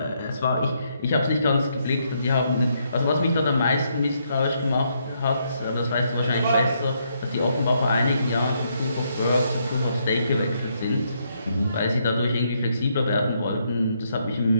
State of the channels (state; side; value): inverted; both; correlation -0.75